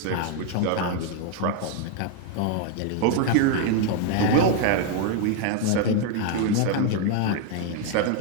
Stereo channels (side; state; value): both; different; correlation 0.00